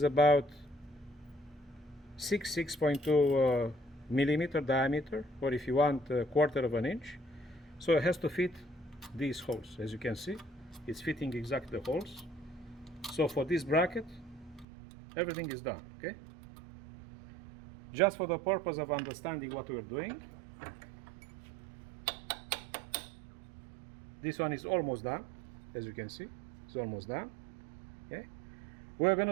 about 6.2 millimeter diameter, or if you want, a quarter of an inch. So it has to fit these holes. As you can see, it's fitting exactly the holes. So for this bracket, everything is done, okay? Just for the purpose of understanding what we're doing, this one is almost done. As you can see, it's almost done, okay? We're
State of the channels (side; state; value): left; drops out; at 14.7 s